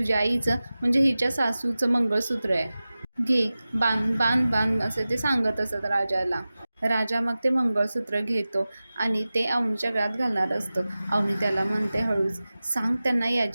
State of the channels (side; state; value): both; inverted; correlation -0.96